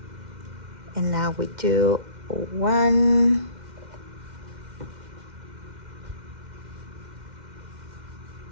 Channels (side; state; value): left; late; 2.1 ms